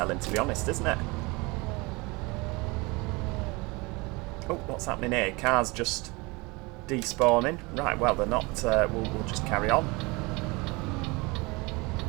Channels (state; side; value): quieter; left; 25.4 dB